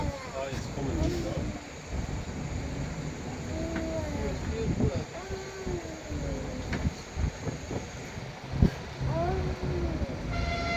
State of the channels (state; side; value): identical; both; correlation 1.00